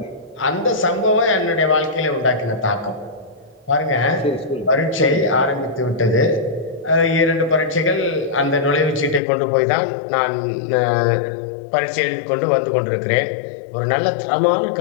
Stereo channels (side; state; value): right; drops out; at 9.2 s